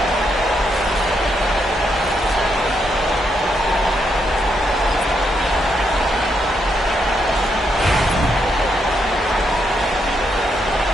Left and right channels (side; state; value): both; normal; correlation 0.79